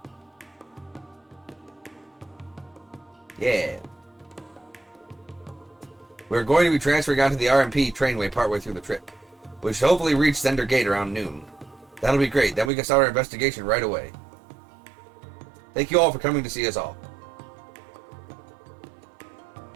Yeah. We're going to be transferring onto the RMP trainway partway through the trip, which should hopefully reach Zender Gate around noon. That'll be great. Then we can start our investigation right away. Thank you all for coming to see us all.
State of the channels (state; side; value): drops out; left; at 12.7 s